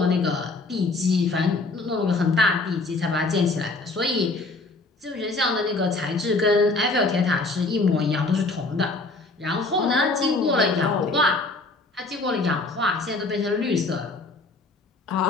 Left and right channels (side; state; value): right; quieter; 3.3 dB